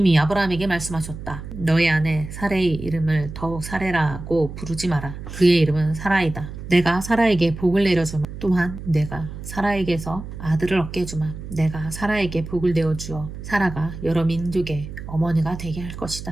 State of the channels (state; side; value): noise; right; hum, 10 dB below the sound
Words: 아브라함에게 말씀하셨다. 너의 아내 사레의 이름을 더욱 사레라고 부르지 마라. 그의 이름은 사라이다. 내가 사라에게 복을 내려주마. 또한 내가 사라에게서 아들을 얻게 해주마. 내가 사라에게 복을 내어주어 사라가 여러 민족의 어머니가 되게 할